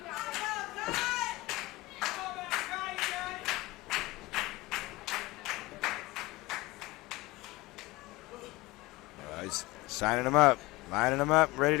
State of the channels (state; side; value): quieter; right; 21.3 dB